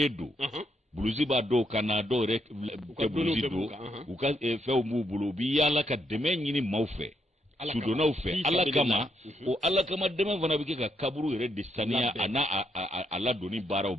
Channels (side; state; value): both; normal; correlation 0.77